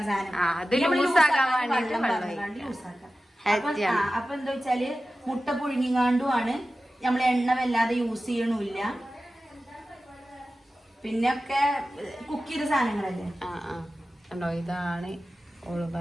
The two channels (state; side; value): normal; both; correlation 0.94